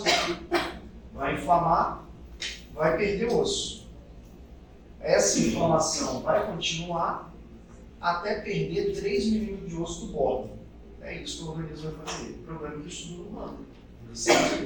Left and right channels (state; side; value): identical; both; correlation 1.00